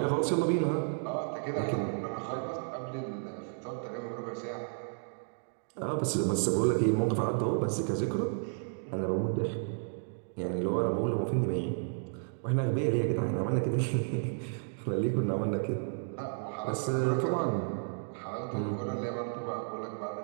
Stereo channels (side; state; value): left; silent; digital silence